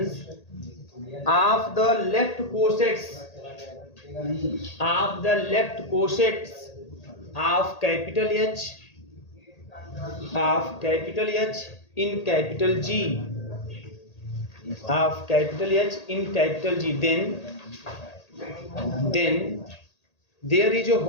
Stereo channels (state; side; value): late; right; 1.8 ms